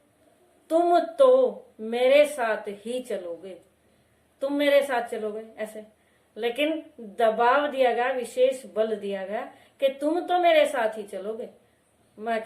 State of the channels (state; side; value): identical; both; correlation 1.00